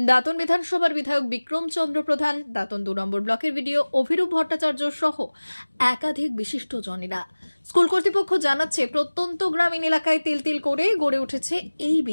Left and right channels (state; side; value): inverted; both; correlation -1.00